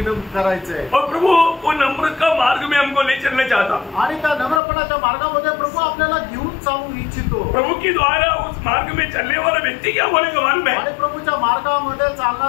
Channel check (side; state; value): right; drops out; at 4.6 s